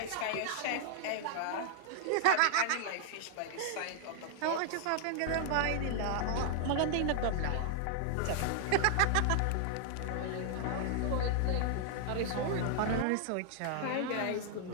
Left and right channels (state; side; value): different; both; correlation -0.01